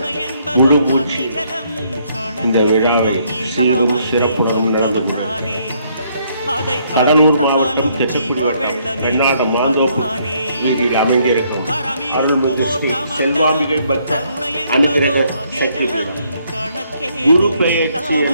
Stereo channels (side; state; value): both; inverted; correlation -0.70